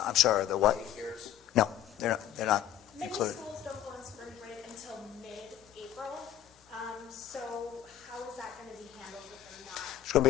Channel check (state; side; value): quieter; right; 11.5 dB